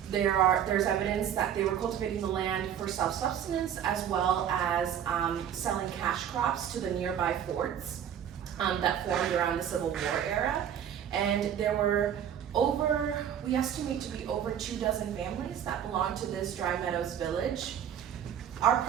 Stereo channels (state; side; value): quieter; left; 9.3 dB